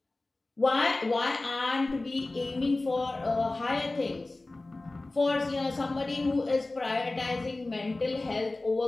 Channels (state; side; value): quieter; right; 3.0 dB